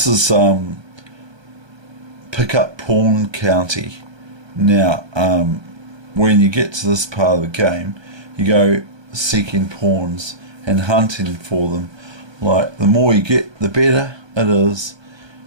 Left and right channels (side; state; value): left; late; 1.3 ms